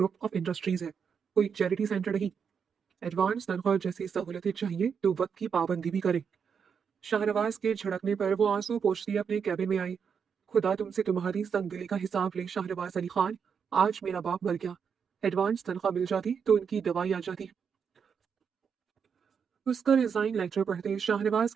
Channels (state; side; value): quieter; left; 6.7 dB